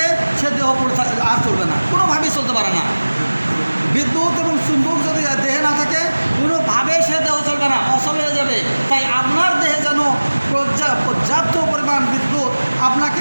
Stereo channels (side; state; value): both; inverted; correlation -1.00